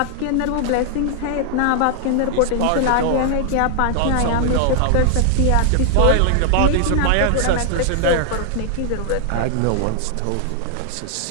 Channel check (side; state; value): both; different; correlation 0.00